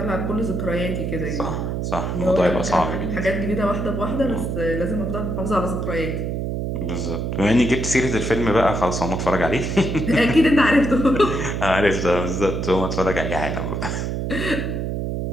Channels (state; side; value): noise; right; hum, 2 dB below the sound